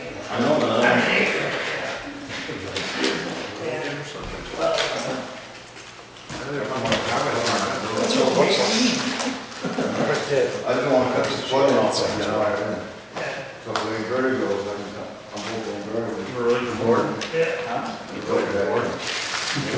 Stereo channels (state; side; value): identical; both; correlation 1.00